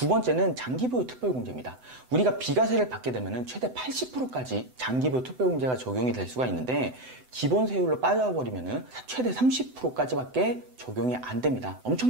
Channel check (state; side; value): late; left; 7.9 ms